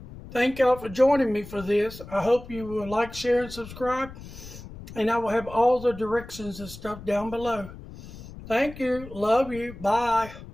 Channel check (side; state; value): left; noise; rumble, 15 dB below the sound